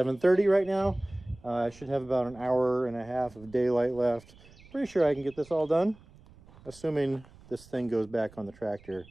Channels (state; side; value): noise; right; rumble, 24 dB below the sound